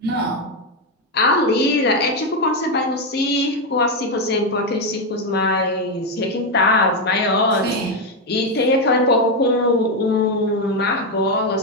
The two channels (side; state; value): both; normal; correlation 0.06